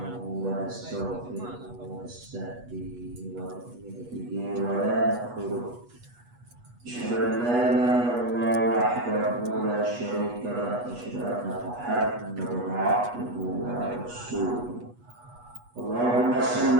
wa nastaghfiruhu wa nastahdihi wa nu'minu bihi wa la nakfuruh. أشهد أن لا إله إلا الله وحده لا شريك له وأشهد أن محمدا عبده ورسوله. اللهم صل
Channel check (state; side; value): late; left; 8.3 ms